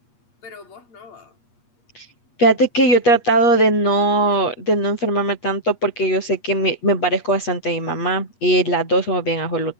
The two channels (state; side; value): late; right; 8.4 ms